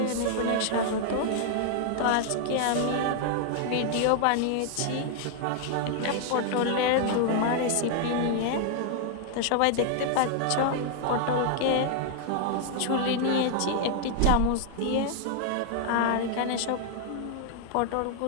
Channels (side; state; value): both; different; correlation 0.00